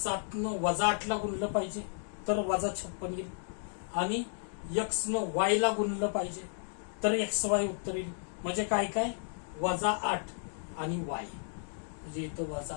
न वजा 8 ला गुणलं पाहिजे तर वजा 56 येईल आणि x न y ला गुणलं पाहिजे तर XY उत्तर येईल. म्हणजे काय काय वजा 8 आणि y म्हणजे इथं वजा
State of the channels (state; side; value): silent; right; 56 dB below the other